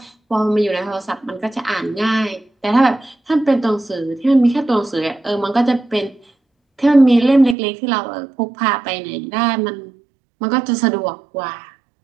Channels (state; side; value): drops out; left; at 7.6 s